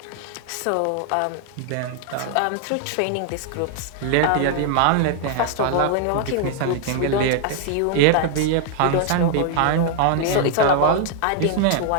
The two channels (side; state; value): both; different; correlation 0.00